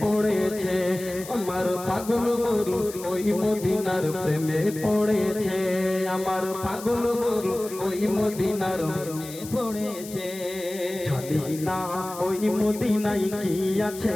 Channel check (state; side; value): noise; left; hiss, 14 dB below the sound